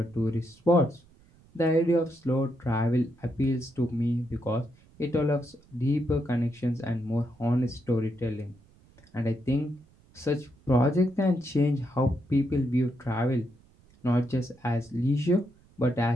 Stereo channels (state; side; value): noise; right; rumble, 28 dB below the sound